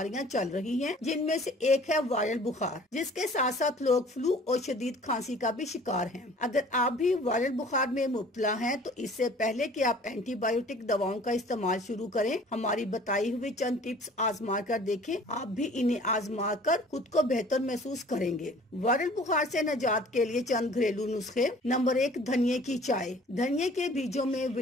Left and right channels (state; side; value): normal; both; correlation 0.50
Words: चल रही हैं, जिनमें से एक है वायरल बुखार, जिसके साथ साथ लोग फ्लू और शदीद खांसी का भी शिकार हैं। अगर आप भी वायरल बुखार में मुब्तला हैं, तो इससे पहले कि आप एंटीबायोटिक दवाओं का इस्तेमाल शुरू करें, हमारी बताई हुई चंद टिप्स आजमा कर देखें। आप भी इन्हें आजमा कर खुद को बेहतर महसूस करेंगे। वायरल बुखार से निजात के लिए चंद घरेलू नुस्खे। नंबर 1, धनिये की चाय। धनिये के बीजों में